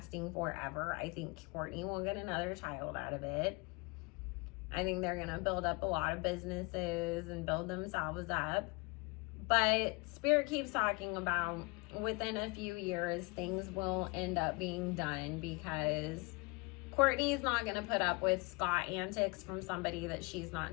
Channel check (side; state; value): right; quieter; 28.0 dB